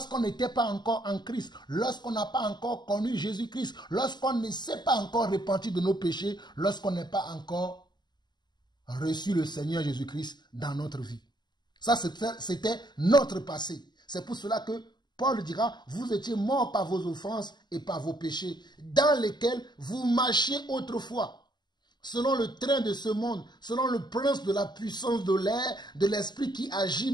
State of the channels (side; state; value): right; late; 0.21 ms